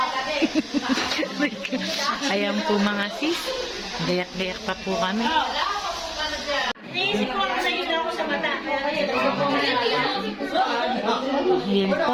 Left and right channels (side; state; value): both; identical; correlation 1.00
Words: Ayan po mga sis. Gayak-gayak pa po kami. Yan